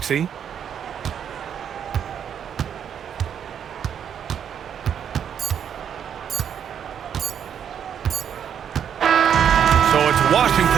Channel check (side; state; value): left; quieter; 8.5 dB